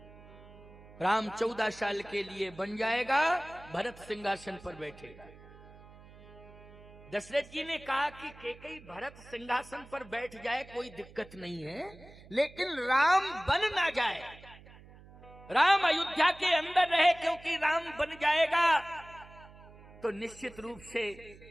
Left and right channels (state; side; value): noise; right; hum, 21 dB below the sound